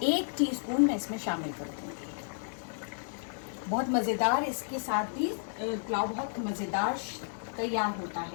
1 टीस्पून मैं इसमें शामिल कर दूँगी। बहुत मज़ेदार इसके साथ भी पुलाव बहुत मज़ेदार तैयार होता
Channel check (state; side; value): silent; right; digital silence